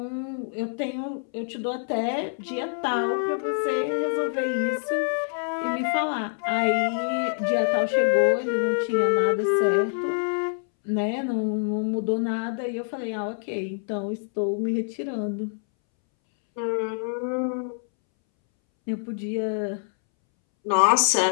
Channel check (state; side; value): silent; right; 61 dB below the other